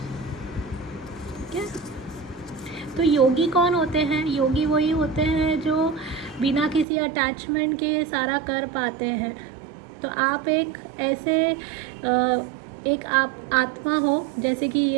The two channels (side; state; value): left; drops out; at 6.9 s